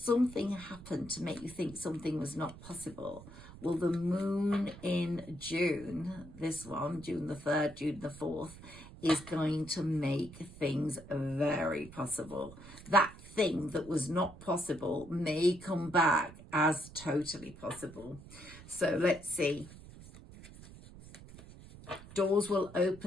happened to make you think something was not possible. Well, the moon in June, this one, June the 3rd, June the 4th, is going to make things very possible. That thing that was not possible may come back as totally possible. So let's see. Doors will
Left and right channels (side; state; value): right; noise; rumble, 17 dB below the sound